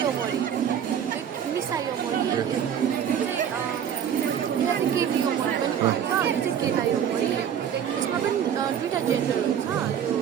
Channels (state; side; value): quieter; left; 8.9 dB